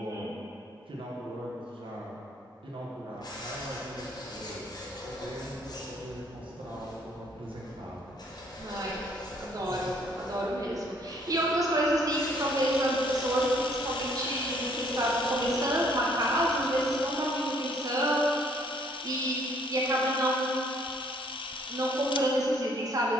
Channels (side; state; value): both; normal; correlation 0.63